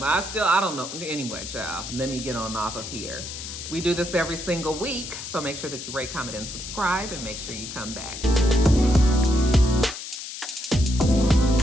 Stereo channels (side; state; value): left; noise; hiss, 9 dB below the sound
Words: I don't know. Anyway, child, let me get on off of here. We do this every single week, so make sure that you rate, comment, and subscribe, and make sure you come back.